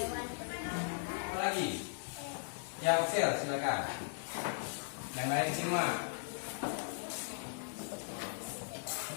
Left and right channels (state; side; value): silent; right; digital silence